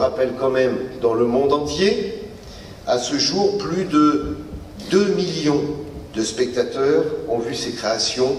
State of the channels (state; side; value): identical; both; correlation 1.00